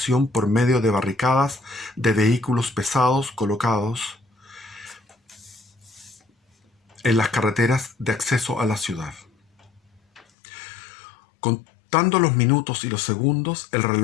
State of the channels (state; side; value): drops out; right; at 10.2 s